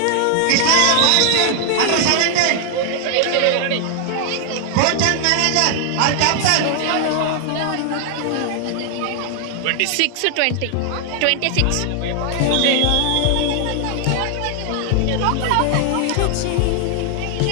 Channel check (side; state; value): both; different; correlation 0.00